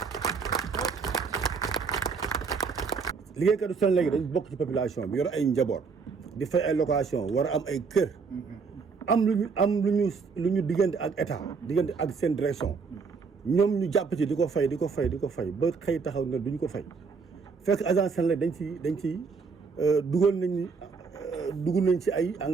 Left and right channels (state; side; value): quieter; left; 5.2 dB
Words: liggéeykatu Senelec dañ bokk ci population bi yor ay njaboot di fay ay location war a am ay kër am lu ñu diggante ak état diggante ak seen direction ñoom ñu jàpp ci di ko fay ba xëy taxaw ne duñ ko fay fekk agence Senelec dañ ci dugg nañ ci ay